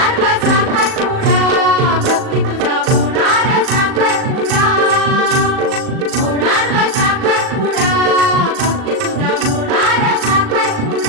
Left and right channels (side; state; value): left; late; 38 ms